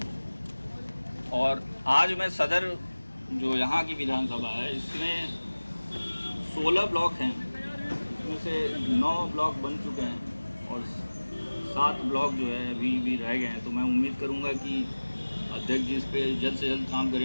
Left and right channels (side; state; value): both; inverted; correlation -1.00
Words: और आज मैं सदर जो यहाँ की विधानसभा है, इसमें 16 ब्लॉक हैं, इसमें से 9 ब्लॉक बन चुके हैं और 7 ब्लॉक जो है अभी भी रह गए हैं। तो मैं उम्मीद करूँगा कि अध्यक्ष जी इस पर जल्द से जल्द काम